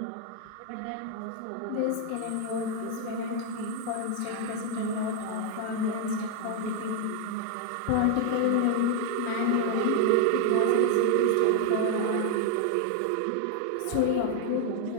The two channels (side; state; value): both; different; correlation 0.00